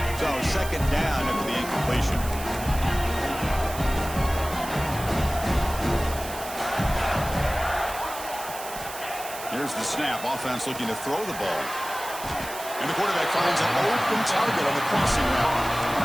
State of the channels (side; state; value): right; noise; hiss, 11 dB below the sound